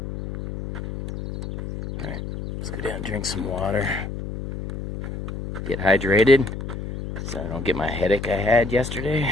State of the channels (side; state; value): left; noise; hum, 7 dB below the sound